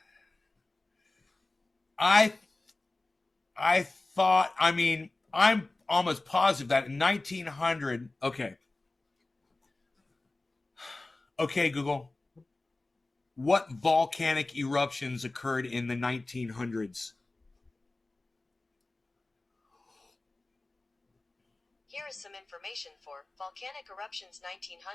I thought, I'm almost positive that in 1900, okay, Google, what volcanic eruptions occurred in the 1900s? Here is some information for volcanic eruptions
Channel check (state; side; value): quieter; right; 3.1 dB